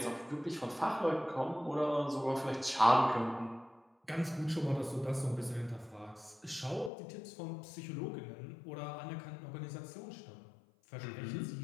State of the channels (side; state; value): right; drops out; at 6.9 s